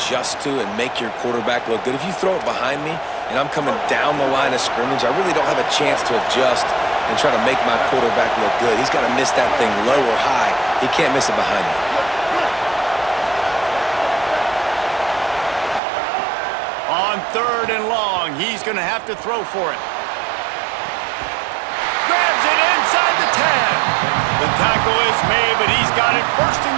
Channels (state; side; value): drops out; left; at 15.8 s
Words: to and make your quarterback look good. If you throw it behind me and I'm coming down the line of scrimmage, I really don't have a chance to adjust and try to make my quarterback look good. He's got to miss that thing low or high. He can't miss it behind me. On 3rd and long, he's going to have to throw for it. Grabs it inside the 10. The tackle is made, but he's got it 1st and